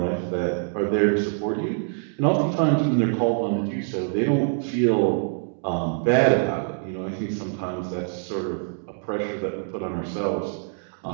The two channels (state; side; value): silent; left; digital silence